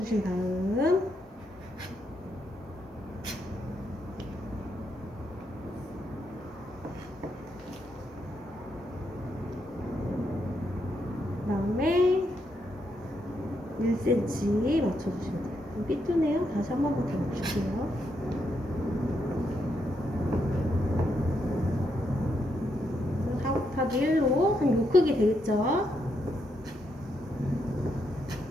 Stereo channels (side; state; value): both; normal; correlation 0.79